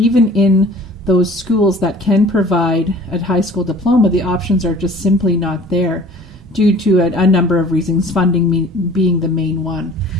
in those schools that can provide a high school diploma. The options are just simply not there due to a number of reasons, funding being the main one.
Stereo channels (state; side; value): normal; both; correlation 0.48